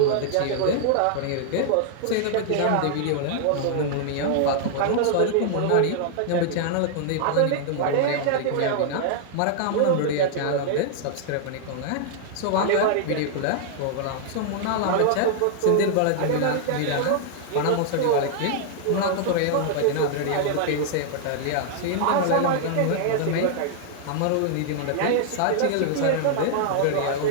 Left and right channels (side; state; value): both; different; correlation -0.01